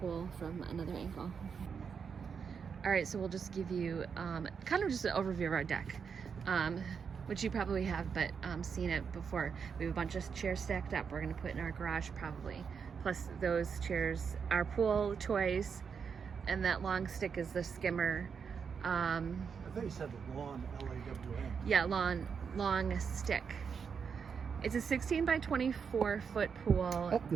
from another angle. All right, so we'll just give you kind of just an overview of our deck, which you probably have, but seen it before. We have a bunch of chairs stacked up. We're going to put in our garage probably. Plus those chairs, our pool toys, and that long stick is the skimmer. I thought you said the lawn, LAWN. Yeah, long stick. It's a 16 by 24 foot pool. Oh,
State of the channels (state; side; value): quieter; left; 6.3 dB